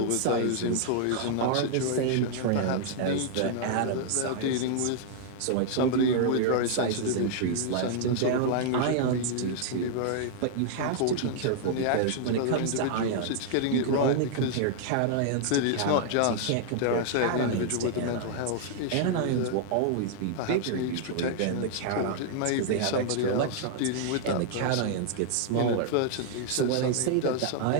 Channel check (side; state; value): both; different; correlation -0.01